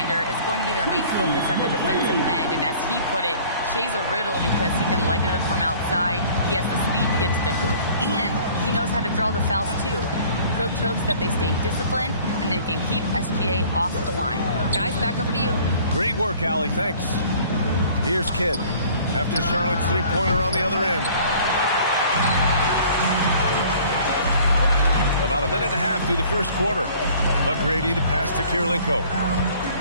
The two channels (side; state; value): both; inverted; correlation -0.51